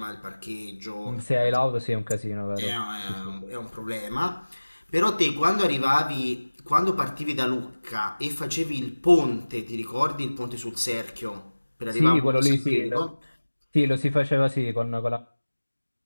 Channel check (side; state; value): both; inverted; correlation -1.00